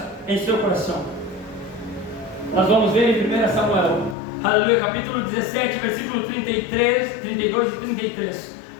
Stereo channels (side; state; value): right; drops out; at 4.2 s